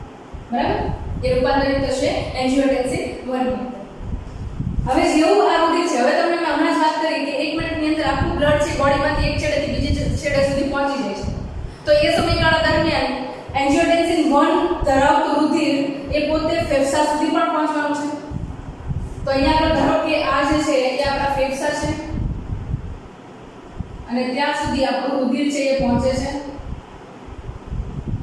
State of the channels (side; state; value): both; identical; correlation 1.00